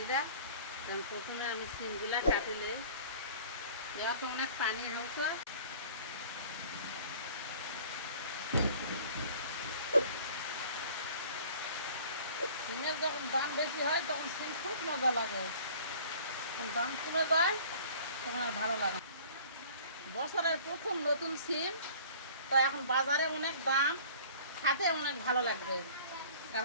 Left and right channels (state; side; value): inverted; both; correlation -0.47